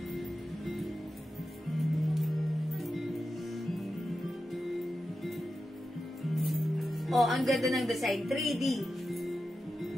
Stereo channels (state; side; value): normal; both; correlation 0.91